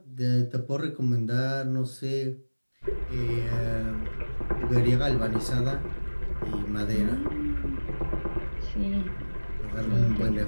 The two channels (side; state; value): both; inverted; correlation -1.00